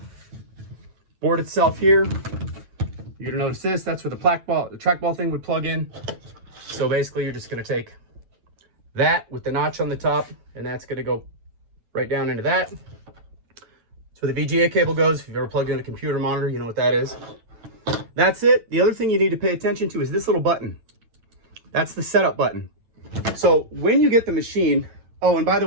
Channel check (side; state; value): left; late; 9.1 ms